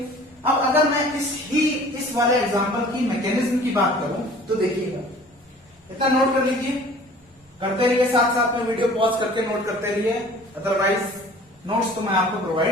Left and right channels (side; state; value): both; normal; correlation 0.48